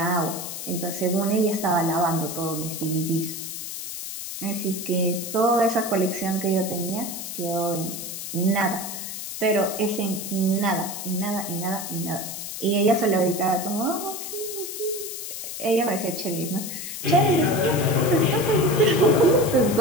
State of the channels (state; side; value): noise; left; hiss, 7 dB below the sound